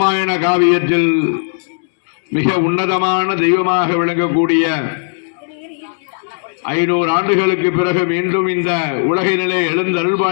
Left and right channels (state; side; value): silent; right; digital silence